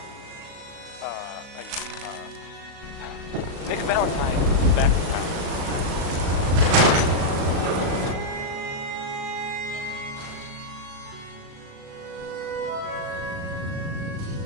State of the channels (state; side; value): late; left; 37 ms